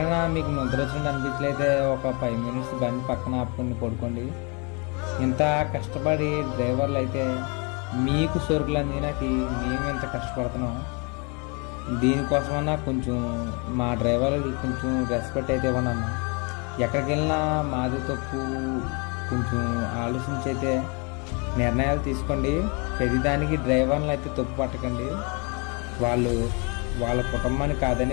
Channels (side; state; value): right; quieter; 32.0 dB